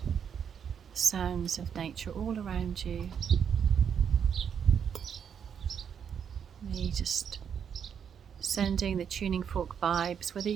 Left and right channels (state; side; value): quieter; left; 7.7 dB